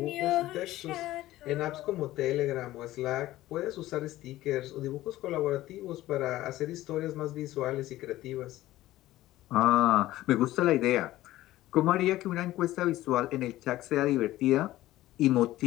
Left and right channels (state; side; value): quieter; right; 15.7 dB